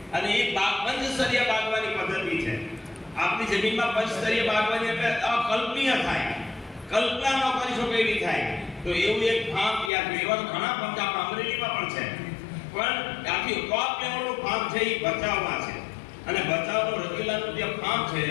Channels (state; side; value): drops out; right; at 9.9 s